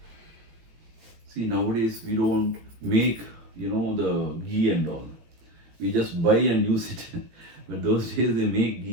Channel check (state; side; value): late; left; 18 ms